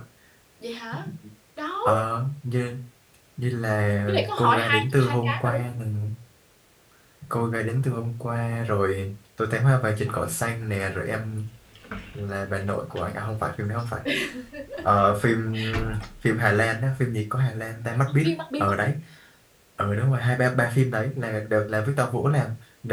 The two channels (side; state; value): both; identical; correlation 1.00